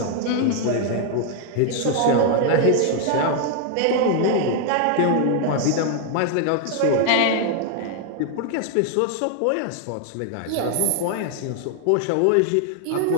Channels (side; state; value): both; different; correlation 0.00